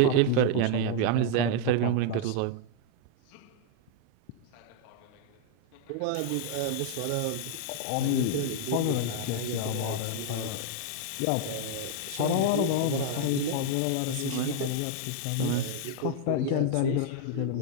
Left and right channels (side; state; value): both; different; correlation 0.00